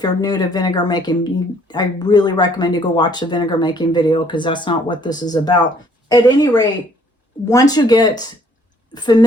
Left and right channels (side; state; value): both; normal; correlation 0.62